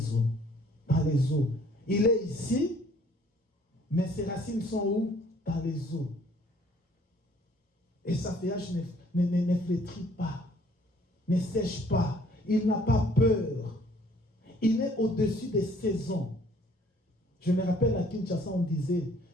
eaux. Dans les eaux. Il est ici, mais ses racines sont où? Dans les eaux. Et sa feuillage ne flétrit pas, ne sèche pas. Il n'a pas peur. Il est au-dessus des saisons. Je me rappelle à Kinshasa, on disait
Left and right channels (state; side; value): normal; both; correlation 0.59